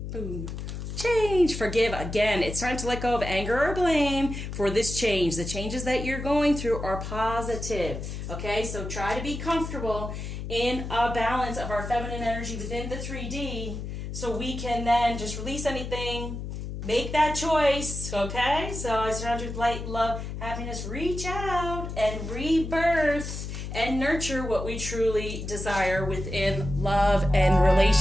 Boom. Change, forgive. Again, it's time to let go of anger or blame for this change. The changes that you're going through are positive. Okay, so try to be comfortable in a balance of our feminine energy within the 3D so we can then just release anything, make that choice. Okay, so I surround you with light, love, happiness. Reach out and rebirth and nurture what we truly desire within love and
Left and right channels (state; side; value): noise; left; hum, 7 dB below the sound